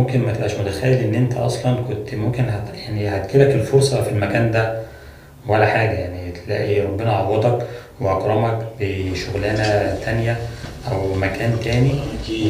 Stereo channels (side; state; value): both; identical; correlation 1.00